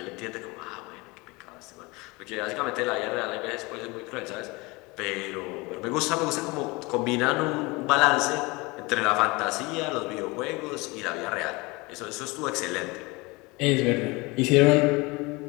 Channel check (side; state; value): right; quieter; 24.7 dB